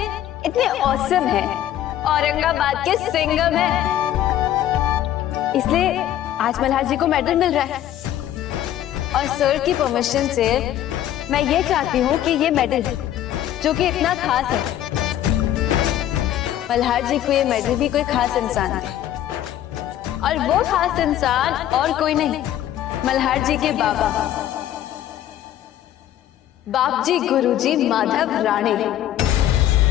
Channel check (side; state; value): right; quieter; 12.0 dB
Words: ऑसम हैं, औरंगाबाद के सिंघम हैं। इसलिए आज मल्हार जी को मेडल मिल रहा है, और सर की परमिशन से मैं ये चाहती हूँ कि ये मेडल जो कि इतना खास है, मल्हार जी को ये मेडल भी कोई खास इंसान दे, और वो खास इंसान और कोई नहीं, मल्हार जी के बाबा, बाप जी गुरुजी माधव राणे।